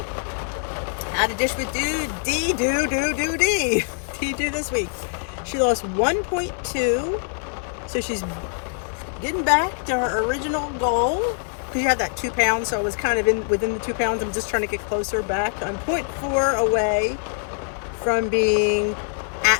how to dish with D do this week. She lost 1.2, so she's getting back to her original goal. Because you had that 2 pounds, so I was kind of within the 2 pounds. I'm just trying to get closer back. I'm 0.4 away from being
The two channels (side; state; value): right; silent; 63 dB below the other